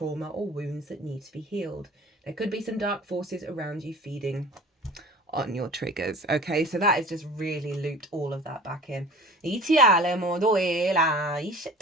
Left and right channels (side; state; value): both; normal; correlation 0.43